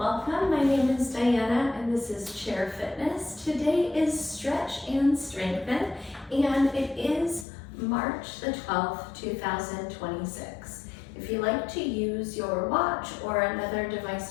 My name is Diana and this is Chair Fitness. Today is Stretch and Strengthen and it is March the 12th, 2026. If you like to use your watch or another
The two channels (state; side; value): drops out; right; at 7.5 s